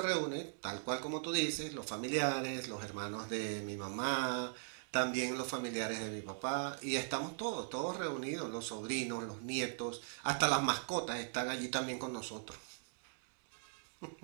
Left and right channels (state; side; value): silent; left; digital silence